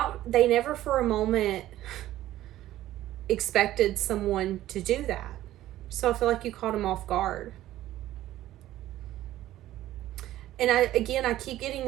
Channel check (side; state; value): left; quieter; 14.2 dB